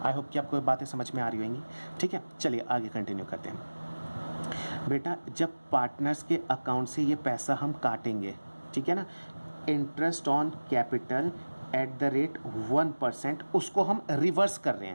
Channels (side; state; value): both; inverted; correlation -1.00